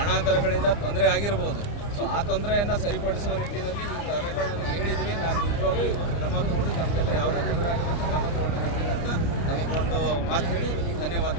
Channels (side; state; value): right; late; 29 ms